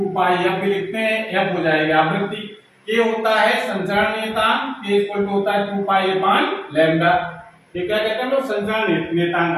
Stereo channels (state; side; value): identical; both; correlation 1.00